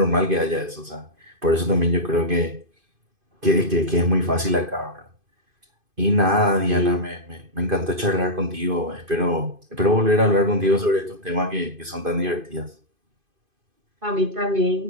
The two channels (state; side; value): late; left; 2.5 ms